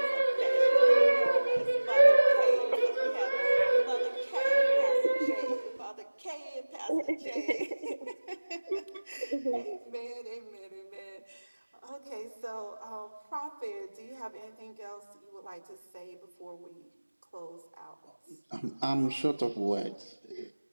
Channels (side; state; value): both; inverted; correlation -1.00